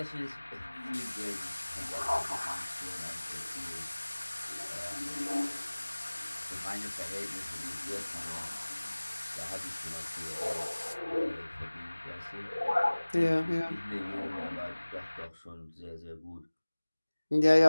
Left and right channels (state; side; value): inverted; both; correlation -1.00